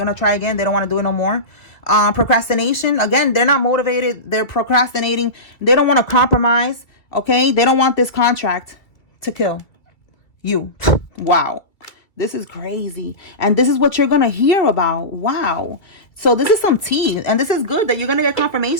to try again. They don't want to do it no more. Procrastination. Again, they're not motivated. They're procrastinating. They don't want to compromise. Okay? They don't want this contract to kill you. Wow. This is crazy. And this is what you're going to hear about. Wow. So this is some tea. And this is good that you're going to get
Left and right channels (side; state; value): right; late; 2.1 ms